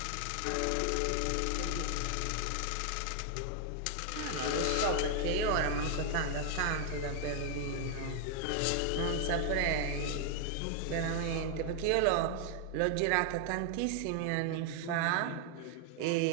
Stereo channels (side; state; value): both; different; correlation 0.00